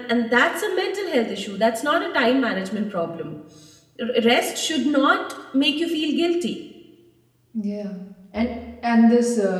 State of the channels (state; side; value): identical; both; correlation 1.00